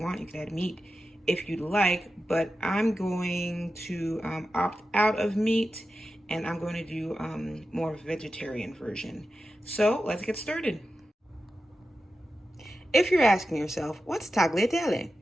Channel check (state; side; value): normal; both; correlation 0.92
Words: You can add meat if you'd like, but I'm going to opt out of meat and I'm going to do more vegetarian version. So let's get started. If you're asking yourself, what's tagliatelle?